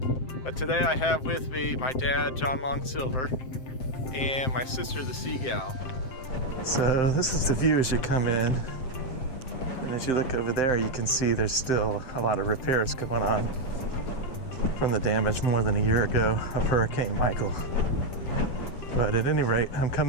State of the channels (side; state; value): right; late; 7.7 ms